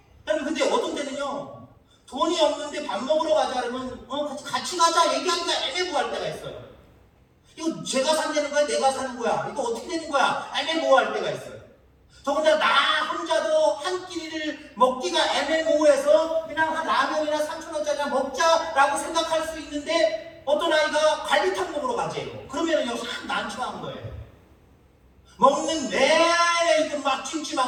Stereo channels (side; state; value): both; identical; correlation 1.00